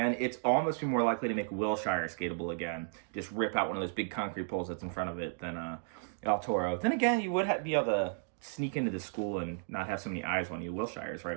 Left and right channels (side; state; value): left; silent; digital silence